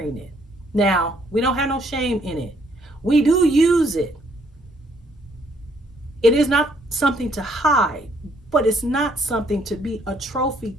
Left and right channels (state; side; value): normal; both; correlation 0.68